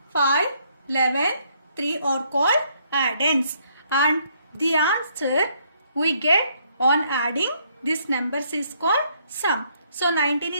5, 11, 3 are called addends. And the answer we get on adding these numbers is called sum. So 19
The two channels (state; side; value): inverted; both; correlation -0.69